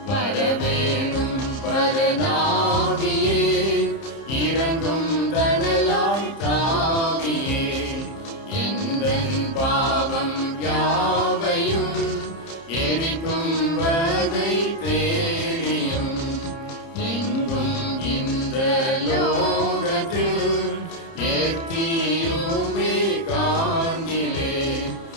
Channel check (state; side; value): late; right; 30 ms